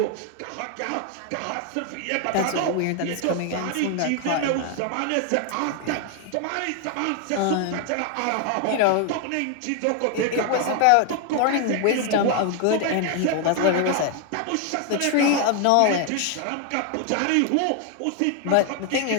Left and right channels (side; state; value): both; different; correlation 0.00